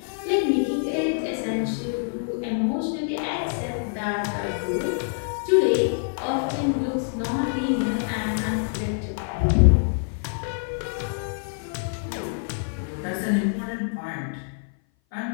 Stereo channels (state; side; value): silent; right; 57 dB below the other